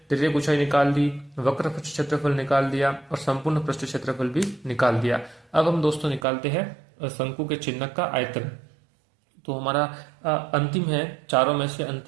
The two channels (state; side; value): drops out; left; at 6.2 s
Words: त्रिज्यक ऊंचाई निकाल दी, वक्र पृष्ठ क्षेत्रफल निकाल दिया और संपूर्ण पृष्ठ क्षेत्रफल भी निकाल दिया। अब हम दोस्तों निकालते हैं शंकु के चिन्हक का आयतन। तो हमारा अंतिम है, चारों में से